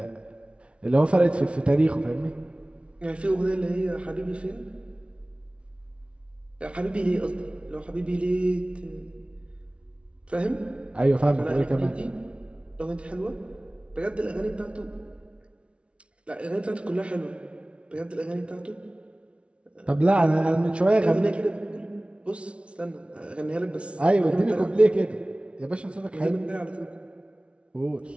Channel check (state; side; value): late; left; 0.060 ms